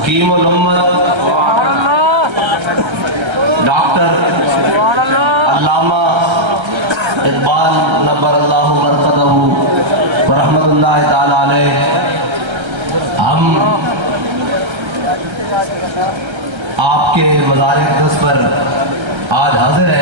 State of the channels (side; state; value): left; late; 1.3 ms